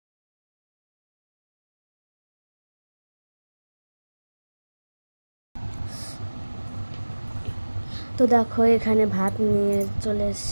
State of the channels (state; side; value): inverted; both; correlation -1.00